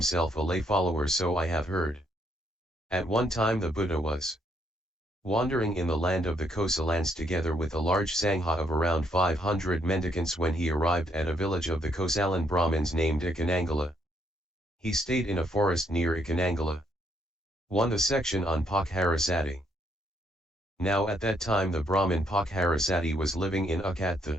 a lay follower, so I have heard. At one time the Buddha was wandering in the land of the Kosalans together with a large Sangha of around 500 mendicants when he arrived at a village of the Kosalan Brahmins named Icchanangala. He stayed in a forest near Icchanangala. 1. The section on Pokkharasati. Now at that time the Brahmin Pokkharasati was living in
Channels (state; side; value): normal; both; correlation 0.72